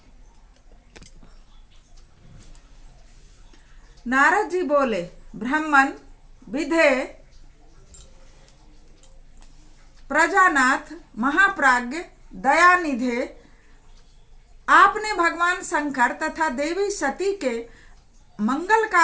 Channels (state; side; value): identical; both; correlation 1.00